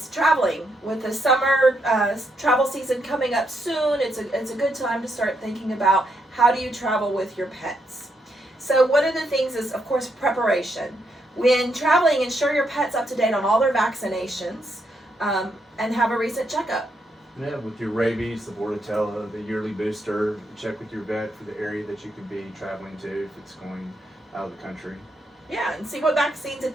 traveling. With the summer travel season coming up soon, it's a good time to start thinking about how do you travel with your pets. So one of the things is, of course, preparation. When traveling, ensure your pet's up to date on all their vaccinations and have a recent checkup. Yeah, with your rabies, the Bordetella, the yearly booster, check with your vet for the area that you could be traveling to if it's going out of the country. Yeah, and see what vaccines that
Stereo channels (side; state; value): both; normal; correlation 0.78